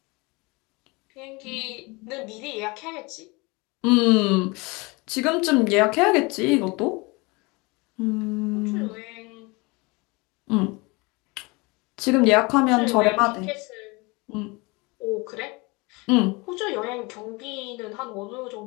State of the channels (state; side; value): quieter; right; 26.2 dB